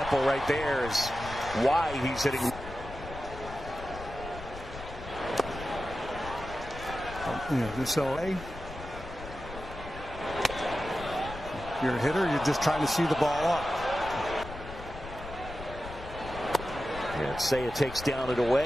right there is why he's hitting. So you're a hitter, you're just trying to see the ball up. And Seiya takes down and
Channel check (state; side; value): noise; left; rumble, 12 dB below the sound